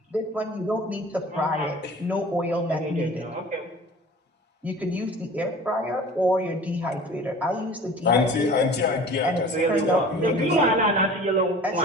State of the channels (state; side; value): normal; both; correlation 0.43